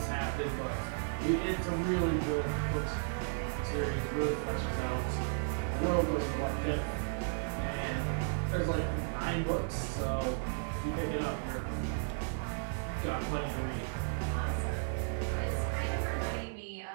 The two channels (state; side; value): silent; left; digital silence